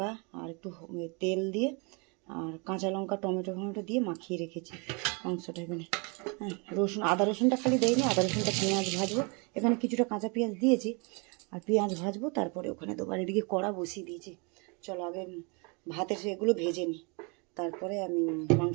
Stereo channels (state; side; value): quieter; left; 32.2 dB